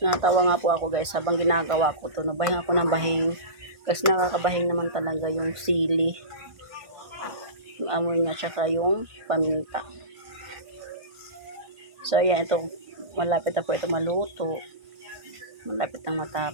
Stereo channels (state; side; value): late; left; 1.5 ms